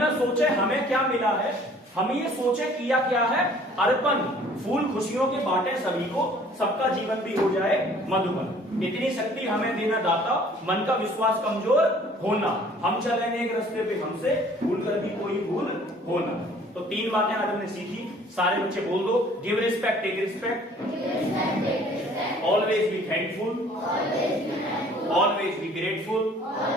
न सोचे हमें क्या मिला है, हम ये सोचे किया क्या है अर्पण, फूल खुशियों के बांटे सभी को, सबका जीवन भी हो जाए मधुबन। इतनी शक्ति हमें देना दाता, मन का विश्वास कमजोर होना, हम चले एक रास्ते पे हमसे भूल कर भी कोई भूल होना। तो 3 बातें आज हमने सीखी, सारे बच्चे बोल दो। Give respect, take respect, always be thankful, always be grateful,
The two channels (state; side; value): normal; both; correlation 0.54